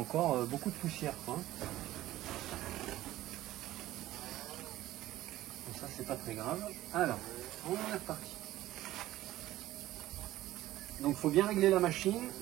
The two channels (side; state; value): left; quieter; 15.3 dB